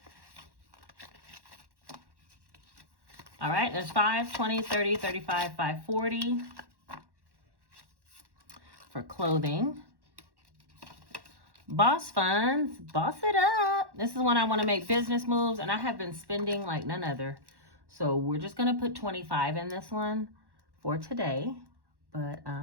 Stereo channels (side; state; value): left; late; 1.1 ms